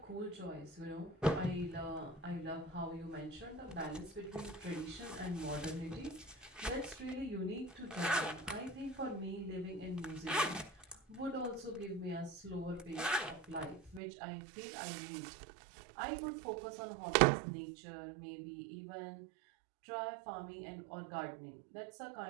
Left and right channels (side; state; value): left; drops out; at 14.0 s